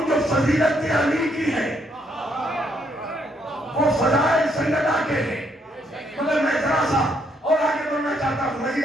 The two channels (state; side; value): normal; both; correlation 0.73